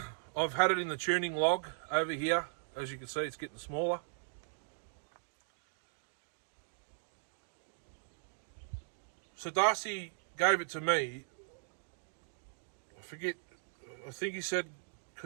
I've had it in the tuning log over here. As you can see, it's getting smaller. So Darcy gave it to me. I think he said,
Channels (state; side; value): silent; left; digital silence